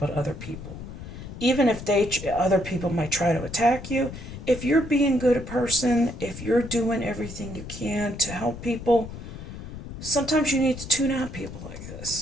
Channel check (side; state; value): left; noise; rumble, 11 dB below the sound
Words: to other people. Even if other people might try to attack you, if you're being good a person, if you're doing everything you can to help people, sometimes you need to tune out people like